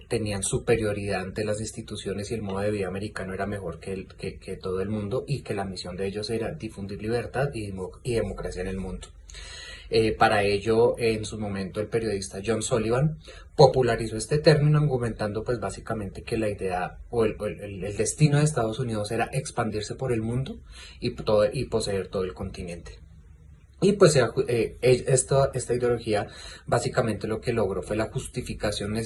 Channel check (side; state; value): both; identical; correlation 1.00